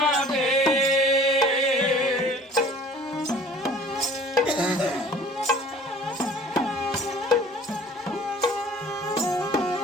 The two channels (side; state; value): both; normal; correlation 0.49